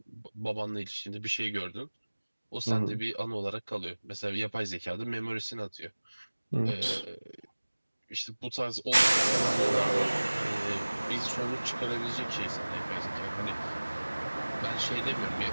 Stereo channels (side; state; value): both; inverted; correlation -1.00